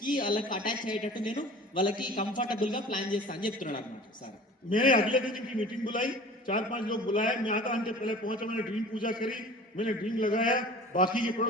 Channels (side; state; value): both; normal; correlation 0.42